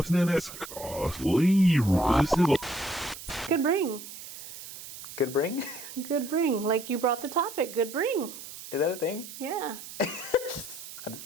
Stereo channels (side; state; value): right; noise; hiss, 13 dB below the sound